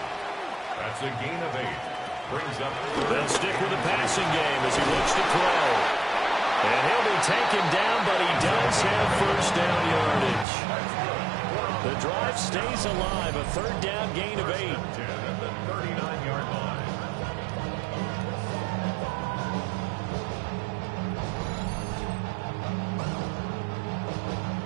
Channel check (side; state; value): left; drops out; at 10.5 s